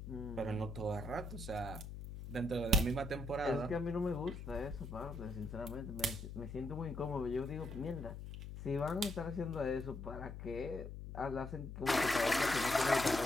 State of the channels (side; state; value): left; noise; hum, 9 dB below the sound